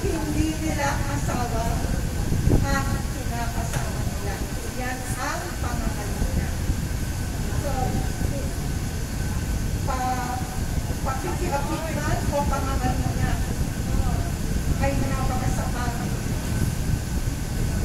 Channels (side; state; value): both; identical; correlation 1.00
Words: hindi nila asawa ang kinakasama nila. Yan ang pangangalun niya. So, pakikiapit man o pangangalun niya ay napakasamang